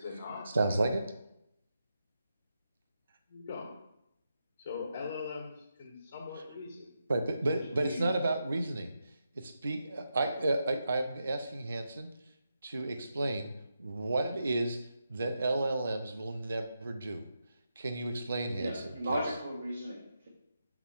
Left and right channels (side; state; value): both; inverted; correlation -0.86